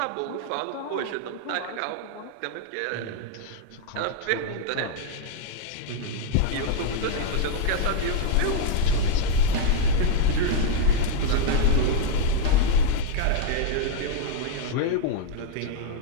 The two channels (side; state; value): both; different; correlation -0.01